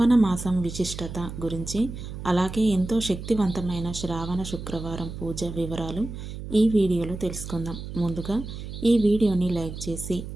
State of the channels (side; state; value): right; noise; hum, 9 dB below the sound